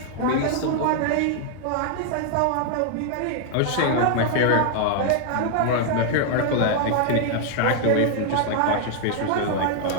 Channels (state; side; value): different; both; correlation 0.00